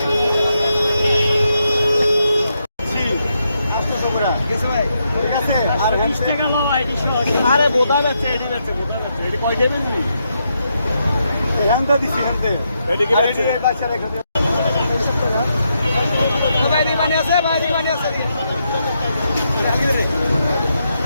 আরে বোধা যাচ্ছে এটি যাচ্ছে বোধা যাচ্ছে এটি কয় দেবেন নি এখানটা দিছি এখানতে এদিকে যাচ্ছে বাচ্চা রেখে দে ভাই দি মানে আছে ভাই দি মানে আছে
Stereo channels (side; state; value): both; inverted; correlation -0.81